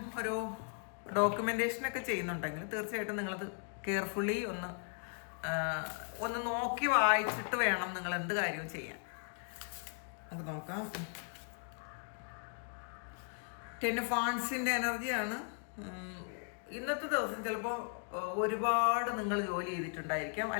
ഒരു ഡോക്യുമെൻറ്റേഷനൊക്കെ ചെയ്യുന്നുണ്ടെങ്കിൽ തീർച്ചയായിട്ടും നിങ്ങളത് കെയർഫുള്ളി ഒന്ന് നോക്കി വായിച്ചിട്ട് വേണം നിങ്ങൾ എന്ത് കാര്യവും ചെയ്യാൻ. നമുക്ക് നോക്കാം. 10 ഓഫ് വാണ്ട്സിൻ്റെ എനർജിയാണ്. ഇന്നത്തെ ദിവസം ചിലപ്പോൾ ഒരുപാട് നിങ്ങൾ ജോലി ചെയ്തിട്ടുണ്ടായിരിക്കാം,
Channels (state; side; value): silent; right; 53 dB below the other